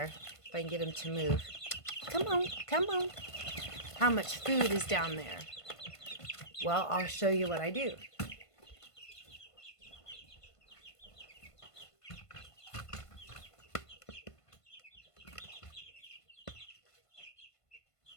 If I can get them to move. Come on, come on. How much food is down there? Well, I'll show you what I do.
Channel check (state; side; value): late; right; 1.5 ms